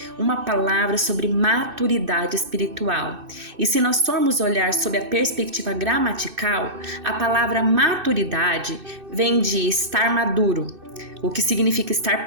uma palavra sobre maturidade espiritual. E se nós formos olhar sob a perspectiva gramatical, a palavra maturidade vem de estar maduro, o que significa estar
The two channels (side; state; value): left; late; 2.6 ms